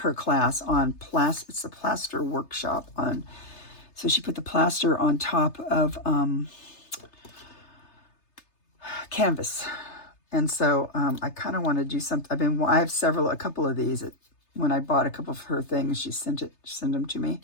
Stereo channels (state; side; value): late; right; 3.3 ms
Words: class on plaster. It's a plaster workshop on, so she put the plaster on top of canvas. And so I kind of want to do something. I have a couple of these. When I bought a couple of her things, she sent them to me.